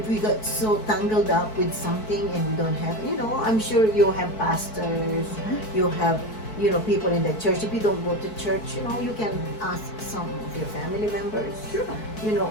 we get so tangled up with something and we don't have, I'm sure you have pastors, you have, people in the church. If you don't go to church, you can ask some of your family members, Sure.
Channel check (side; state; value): right; late; 4.6 ms